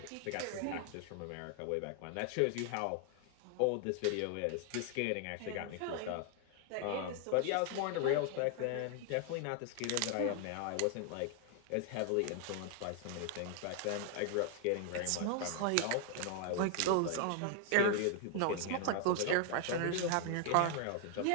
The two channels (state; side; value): different; both; correlation 0.00